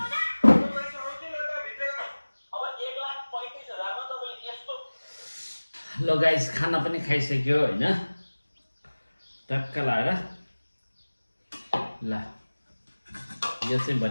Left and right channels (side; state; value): both; inverted; correlation -1.00